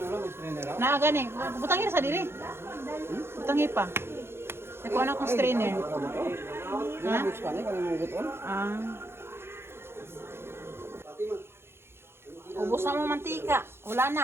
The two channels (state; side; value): late; left; 0.12 ms